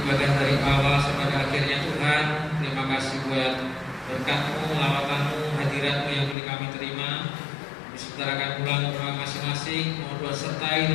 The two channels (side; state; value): right; drops out; at 6.4 s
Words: bagian dari awal sampai akhirnya Tuhan. Terima kasih buat berkat-Mu, lawatan-Mu, hadirat-Mu yang boleh kami terima. Disetarakan pulang ke rumah masing-masing. Mohon Tuhan sertai